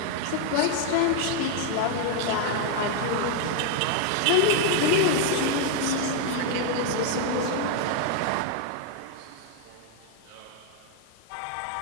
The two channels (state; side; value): different; both; correlation 0.00